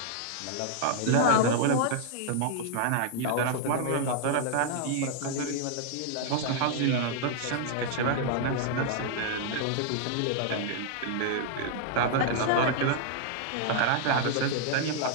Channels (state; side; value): different; both; correlation 0.00